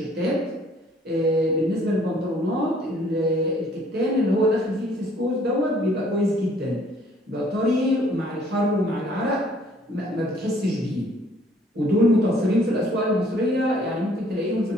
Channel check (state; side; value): normal; both; correlation 0.60